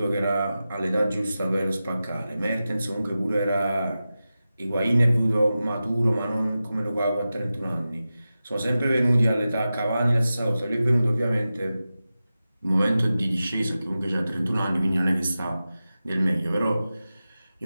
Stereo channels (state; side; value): inverted; both; correlation -0.94